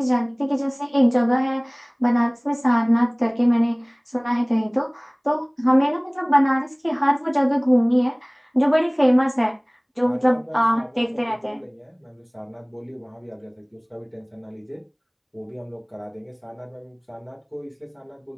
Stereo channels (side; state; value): both; identical; correlation 1.00